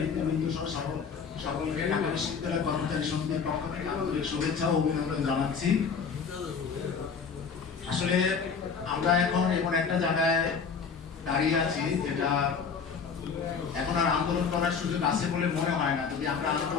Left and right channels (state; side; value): quieter; right; 5.9 dB